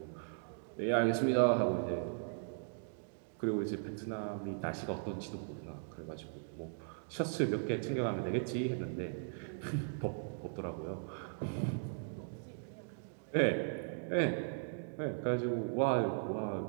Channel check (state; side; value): silent; left; digital silence